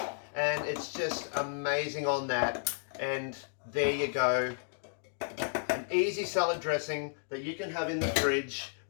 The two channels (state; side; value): silent; right; digital silence